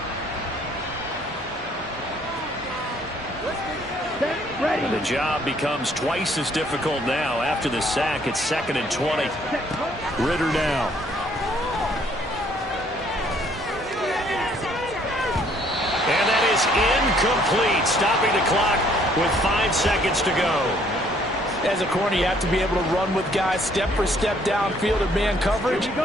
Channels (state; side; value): normal; both; correlation 0.63